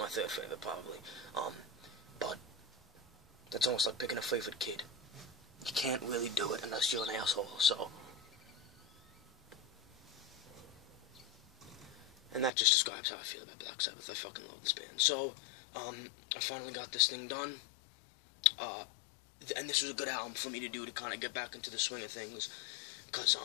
third favorite probably. But that's almost like picking a favorite kid. You can't really do it unless you're an asshole, so. And that just describes how I feel about Black Sabbath. I fucking love this band. So, I finally got this thing done. And this was a good album for me to do to kind of get back into the swing of things. Because,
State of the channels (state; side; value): drops out; right; at 12.5 s